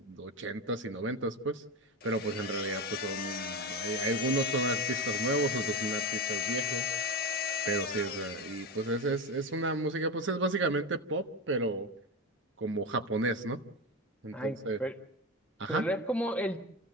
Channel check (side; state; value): both; normal; correlation 0.20